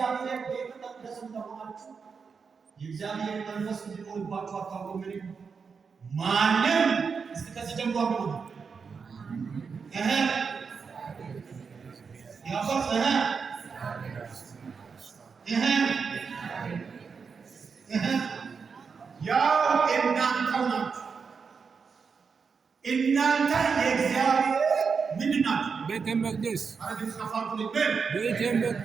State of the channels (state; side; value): quieter; left; 5.6 dB